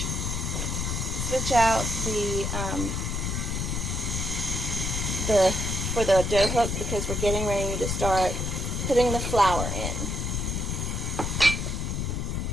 out for the dough hook, because we're getting ready to start putting the flour in.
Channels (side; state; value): left; noise; rumble, 1 dB below the sound